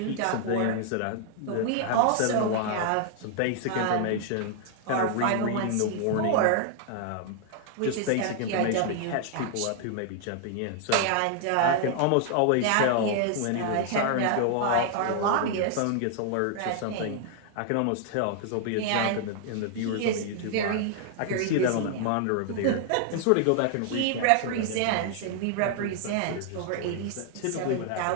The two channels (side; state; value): both; different; correlation 0.00